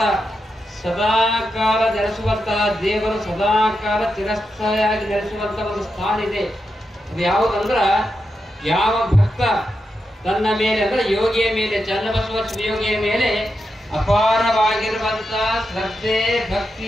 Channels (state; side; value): normal; both; correlation 0.87